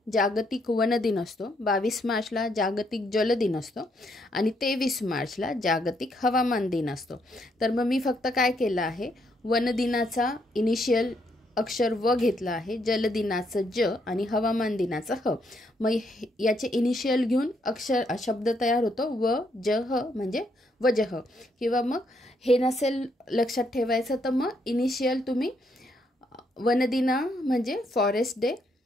जागतिक वन दिन असतो, 22 मार्चला जागतिक जल दिन असतो आणि 23 मार्चला जागतिक हवामान दिन असतो. तर मग मी फक्त काय केलं आहे, वन दिनाचा इनिशियल अक्षर व घेतला आहे, जल दिनाचं ज आणि हवामान दिनाचं ह. मग याचे इनिशियल घेऊन अक्षर शब्द तयार होतो व ज ह म्हणजे वजह. किंवा मग हे नसेल लक्षात ठेवायचं तर मग इनिशियल तुम्ही वनदिना म्हणजे फॉरेस्ट डे,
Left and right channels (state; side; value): normal; both; correlation 0.74